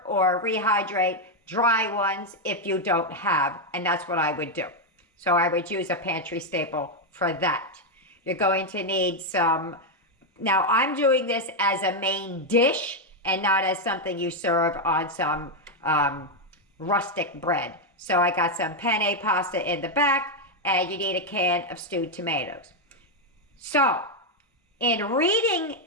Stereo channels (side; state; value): both; normal; correlation 0.02